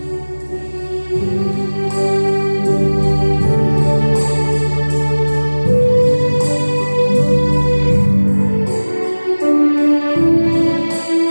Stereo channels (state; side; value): inverted; both; correlation -1.00